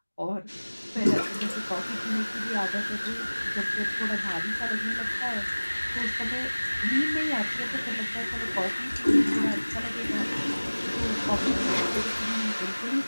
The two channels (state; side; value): inverted; both; correlation -1.00